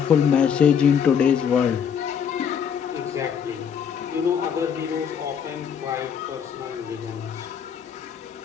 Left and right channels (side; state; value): right; quieter; 7.6 dB